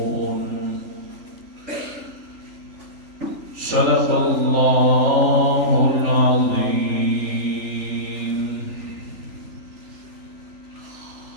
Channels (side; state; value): left; late; 3.4 ms